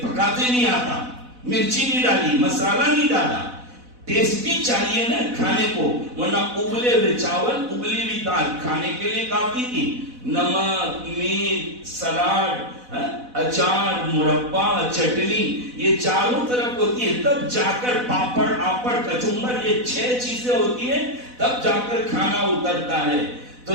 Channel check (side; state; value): left; late; 4.0 ms